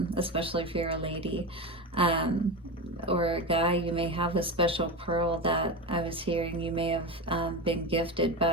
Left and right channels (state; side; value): normal; both; correlation 0.21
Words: especially if you're a lady. Or a guy, you may have a special pearl that I was hearing you may have been gifted